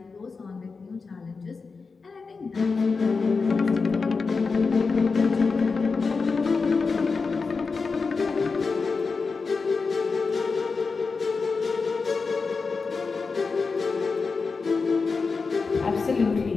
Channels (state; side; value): quieter; right; 4.6 dB